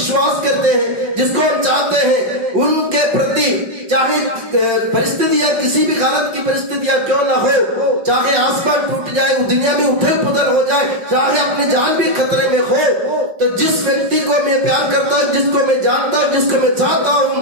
करते हैं, जिसको हम चाहते हैं, उनके प्रति चाहे परिस्थितियां, किसी भी हालत की परिस्थितियां क्यों ना हो, चाहे आसमान टूट जाए, दुनिया में उथल पुथल हो जाए, चाहे अपनी जान भी खतरे में हो, तो जिस व्यक्ति को मैं प्यार करता हूं, जिसको मैं जानता हूं, जिसको मैं चाहता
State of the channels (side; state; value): left; late; 5.5 ms